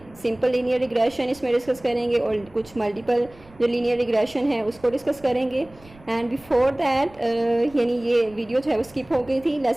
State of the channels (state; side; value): noise; right; rumble, 24 dB below the sound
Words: Simple linear regression इसमें discuss करेंगे और कुछ multiple जो linear regression है उसको discuss करेंगे. And before that यानी ये video जो है वो skip हो गई थी.